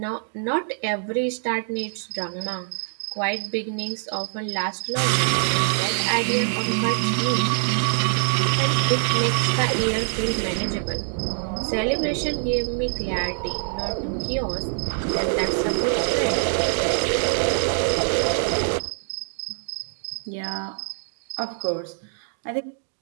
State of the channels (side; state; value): left; silent; digital silence